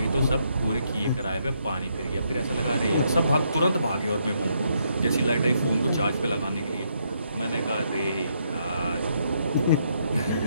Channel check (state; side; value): inverted; both; correlation -0.75